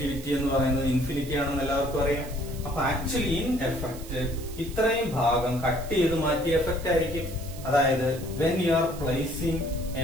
എന്ന് പറയുന്നത് ഇൻഫിനിറ്റി ആണെന്ന് എല്ലാവർക്കും അറിയാം. അപ്പൊ ആക്ച്വലി ഇൻ എഫക്ട് ഇത്രയും ഭാഗം കട്ട് ചെയ്ത് മാറ്റിയ എഫക്ട് ആയിരിക്കും. അതായത് when you are placing a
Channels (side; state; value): right; noise; hiss, 17 dB below the sound